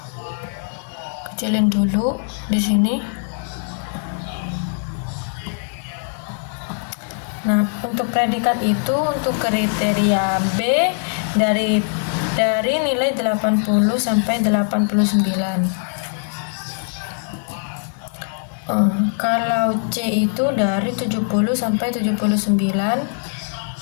kecilin dulu di sini. Nah, untuk predikat itu untuk kriteria B dari nilai 80 sampai 89. Kalau C itu dari 70 sampai 79.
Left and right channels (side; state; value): right; silent; 65 dB below the other